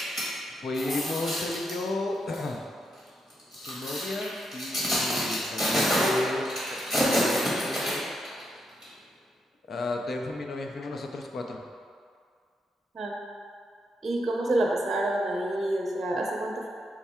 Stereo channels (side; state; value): both; normal; correlation 0.81